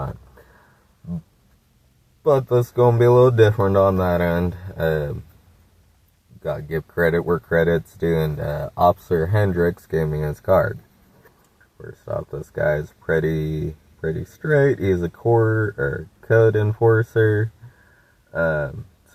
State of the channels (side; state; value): both; identical; correlation 1.00